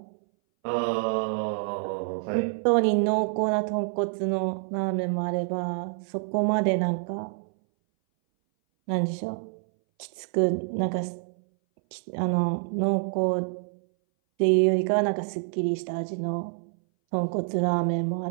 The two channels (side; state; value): left; silent; 59 dB below the other